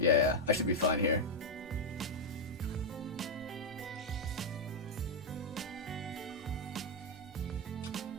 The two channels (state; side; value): normal; both; correlation -0.01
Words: I should be fine here.